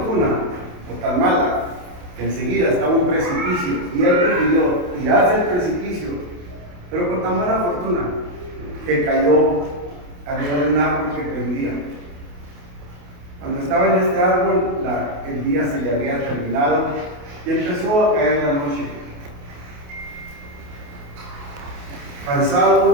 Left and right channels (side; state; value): left; late; 28 ms